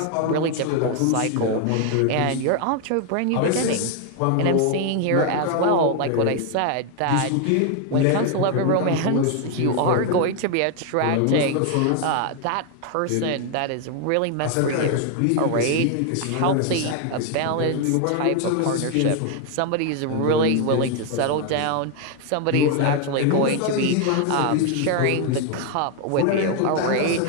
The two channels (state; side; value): different; both; correlation 0.01